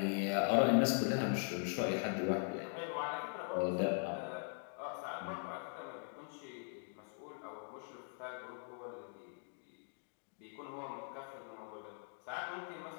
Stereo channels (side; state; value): right; silent; 50 dB below the other